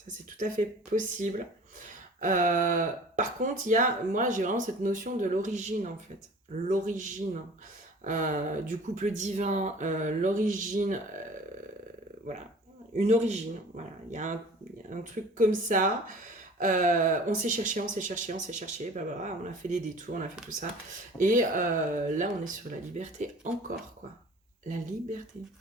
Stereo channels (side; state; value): both; normal; correlation 0.45